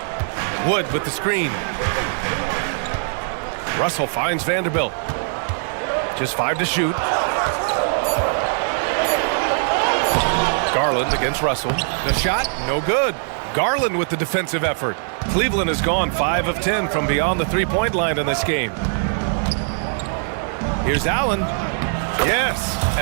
Wood with the screen. Russell finds Vanderbilt. Just 5 to shoot. Garland against Russell. The shot, no good. Garland with the defensive effort. Cleveland has gone 5 of 10 from beyond the three-point line in this game. Here's Allen. Yes,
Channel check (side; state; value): left; silent; 65 dB below the other